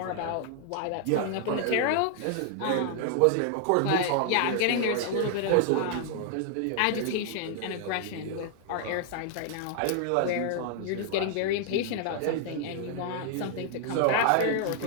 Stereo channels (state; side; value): different; both; correlation 0.00